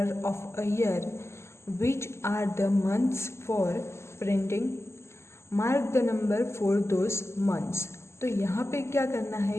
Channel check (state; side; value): late; right; 0.13 ms